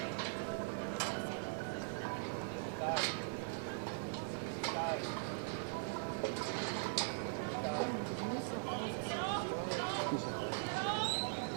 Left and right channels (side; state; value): left; silent; 50 dB below the other